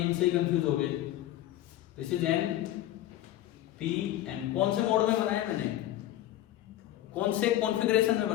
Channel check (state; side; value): quieter; right; 13.9 dB